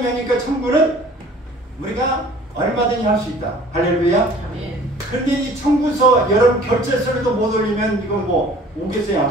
하니까 청구는 우리가 얼마든지 할 수 있다. 할렐루야. 그런데 이 청구서 여러분 결제서를 못 올리면 이거 뭐 오겠어요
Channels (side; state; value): both; normal; correlation 0.50